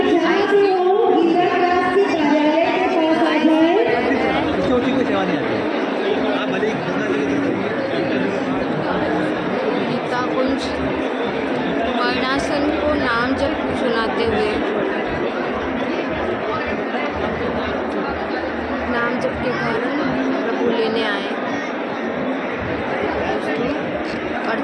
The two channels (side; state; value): both; identical; correlation 1.00